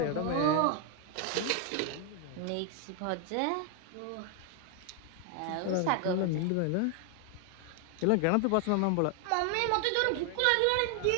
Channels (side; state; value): both; different; correlation 0.00